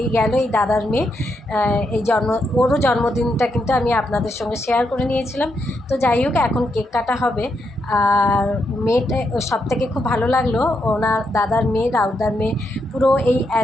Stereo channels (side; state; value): both; normal; correlation 0.81